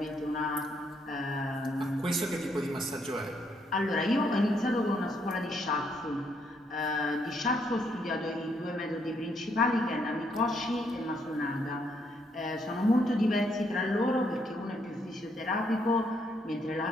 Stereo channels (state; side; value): normal; both; correlation 0.73